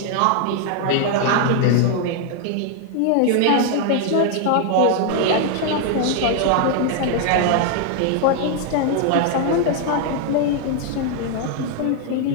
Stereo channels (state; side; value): different; both; correlation 0.00